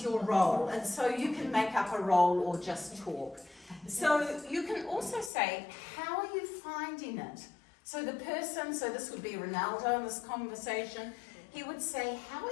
your role? And so you can make up a role or just talk. So you can also say, how are you finding it? So the person, so this would be Ronaldo in this conversation, he would say, how are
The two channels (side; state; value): right; drops out; at 5.3 s